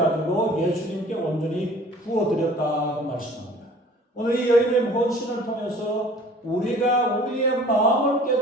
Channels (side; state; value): both; normal; correlation 0.48